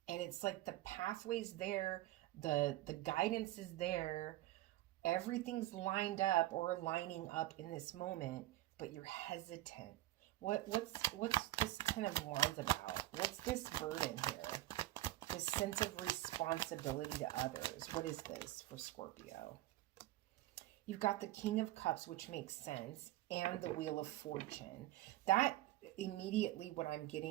And it's like the pathway's there, the guidance is there, everything's lined up or lining up in this moment, but you're hesitant. What's this kind of Wands about? What's this burden here? This sense of responsibility to others. What is this for Scorpio? You've got the King of Cups, which makes sense, and the Wheel of Fortune. That immediately what I'm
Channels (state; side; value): quieter; left; 16.3 dB